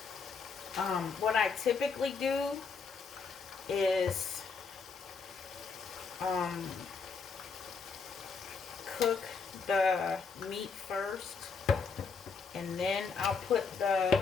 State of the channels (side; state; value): right; quieter; 5.1 dB